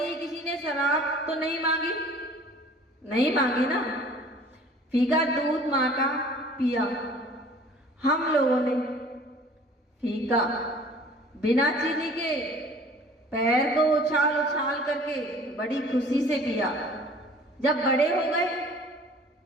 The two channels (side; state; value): both; normal; correlation 0.49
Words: किसी ने शराब तो नहीं मांगी ना, फीका दूध माँ का पिया। हम लोगों ने फीका बिना चीनी के पैर को उछाल उछाल करके बड़ी खुशी से पिया। जब बड़े हो गए,